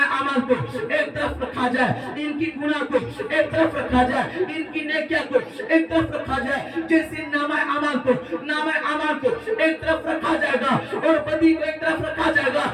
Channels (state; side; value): identical; both; correlation 1.00